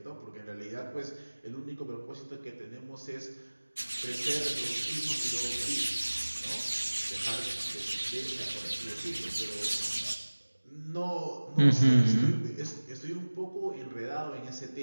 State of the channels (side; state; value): both; inverted; correlation -1.00